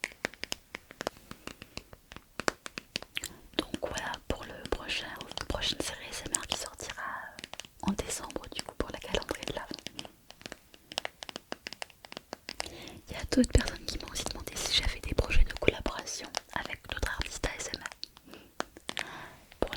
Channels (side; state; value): both; identical; correlation 1.00